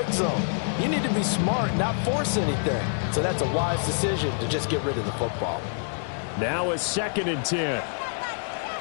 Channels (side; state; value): right; silent; digital silence